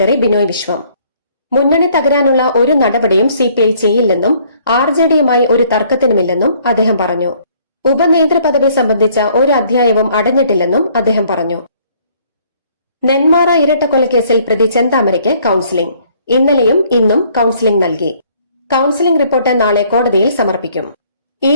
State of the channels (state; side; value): inverted; both; correlation -0.62